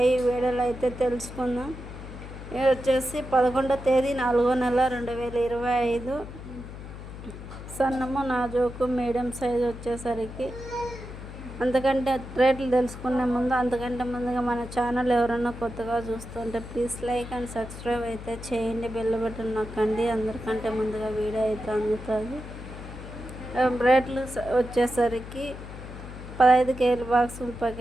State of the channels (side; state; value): left; noise; hum, 12 dB below the sound